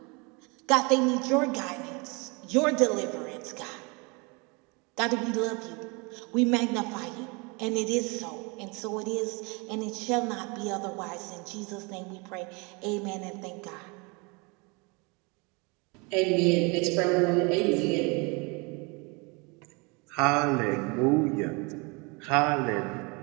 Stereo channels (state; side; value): quieter; left; 29.5 dB